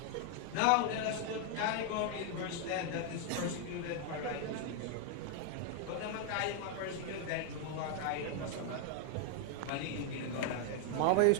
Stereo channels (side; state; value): both; different; correlation 0.00